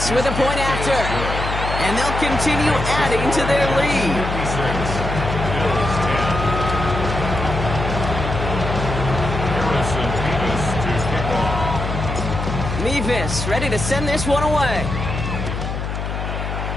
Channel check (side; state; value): left; noise; hum, 4 dB below the sound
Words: with a point after. And they'll continue adding to their lead. 56. Bills 10. Harrison Davis to kick off. Nevis ready to send this one away.